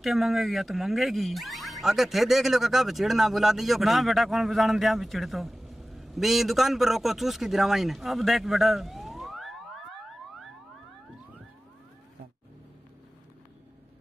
मांगेगी या तो मांगेगी आगे थे देख लो काका बचिड़ ना बुला दियो ना बेटा कौन बजान दिया बिचिड़ तो भी दुकान पर रोको चूस की दिरावाई ने। अब देख बेटा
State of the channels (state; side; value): normal; both; correlation 0.96